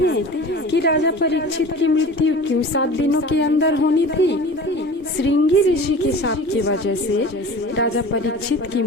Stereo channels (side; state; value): both; normal; correlation 0.39